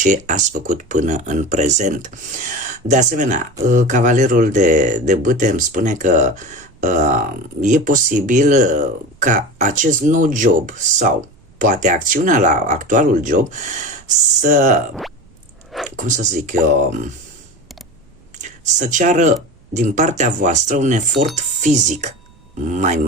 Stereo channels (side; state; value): right; noise; rumble, 29 dB below the sound